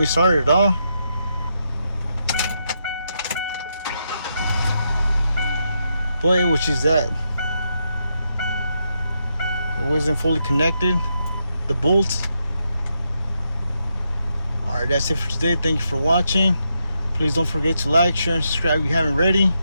start at all. But which is that it wasn't fully connected, the bolts. Alright, that's it for today. Thank you for watching. Please don't forget to like, share, and subscribe if you haven't already.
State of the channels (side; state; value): both; inverted; correlation -0.82